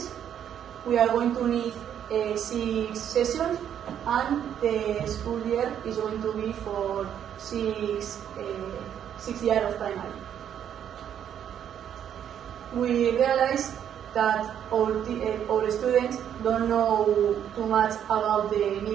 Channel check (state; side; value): quieter; left; 9.4 dB